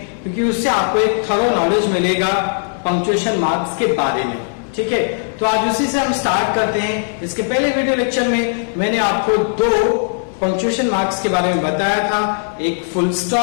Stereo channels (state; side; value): silent; right; digital silence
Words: क्योंकि उससे आपको एक थरो नॉलेज मिलेगा पंक्चुएशन मार्क्स के बारे में। ठीक है, तो आज उसी से हम स्टार्ट करते हैं। इसके पहले वीडियो लेक्चर में मैंने आपको दो पंक्चुएशन मार्क्स के बारे में बताया था, एक फुल